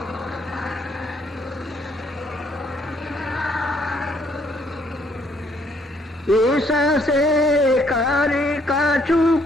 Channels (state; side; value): normal; both; correlation 0.67